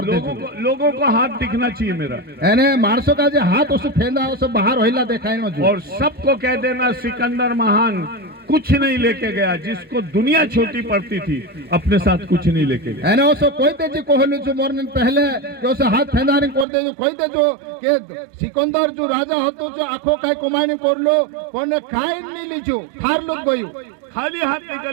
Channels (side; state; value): left; drops out; at 16.7 s